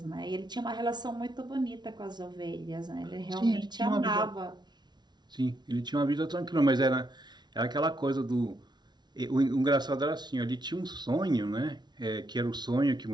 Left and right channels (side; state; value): left; late; 0.20 ms